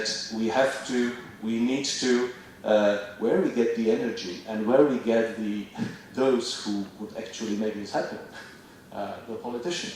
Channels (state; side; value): identical; both; correlation 1.00